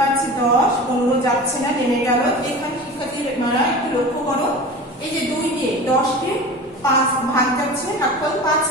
10, 15 যাচ্ছে না, নেমে গেল। এখানে শিক্ষার্থীরা একটু লক্ষ্য করো, এই যে 2 দিয়ে 10 কে 5 ভাগ যাচ্ছে, ভাগফল 5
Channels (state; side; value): normal; both; correlation 0.34